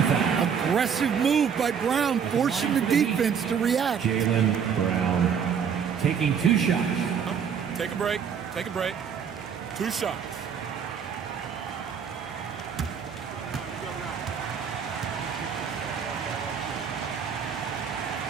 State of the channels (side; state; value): left; quieter; 7.2 dB